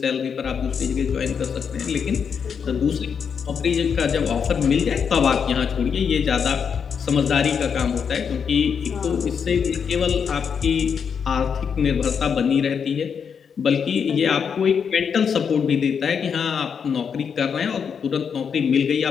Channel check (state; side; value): quieter; right; 6.8 dB